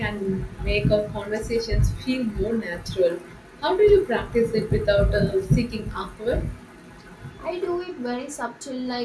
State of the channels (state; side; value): identical; both; correlation 1.00